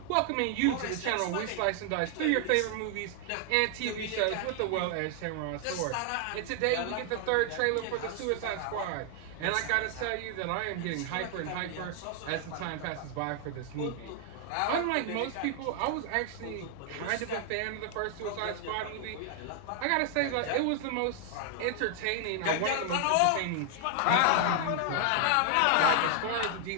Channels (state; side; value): different; both; correlation 0.00